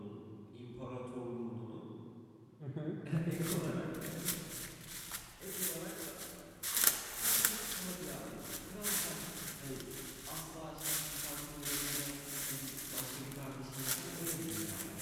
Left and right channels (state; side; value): identical; both; correlation 1.00